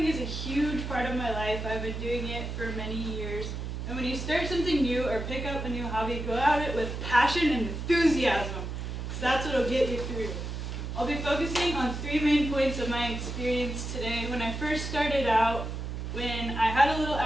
is a huge part of my life. I've been doing it for many years. And when you start something new or pick up a new hobby, go at it with passion and enthusiasm, because that's what will get you through. I'll be focusing on 3 main points of my experience today. When I first started out, when I had a little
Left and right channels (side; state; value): right; noise; hum, 5 dB below the sound